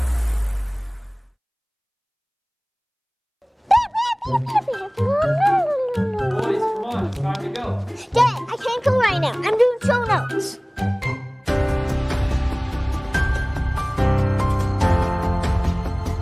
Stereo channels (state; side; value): identical; both; correlation 1.00